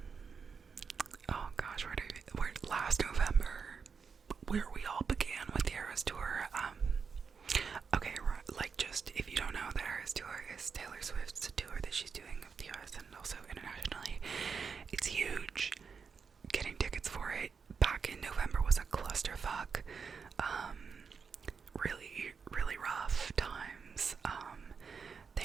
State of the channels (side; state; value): left; quieter; 5.7 dB